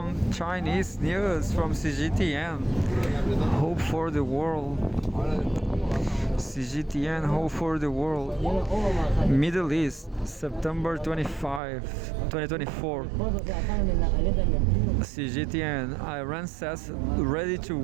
Chinese news from CGTN. Hope for the world. CGTN Hope for the World. Middle East, September 25, 2024. CGTN, Iran says ready to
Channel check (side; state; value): left; drops out; at 11.6 s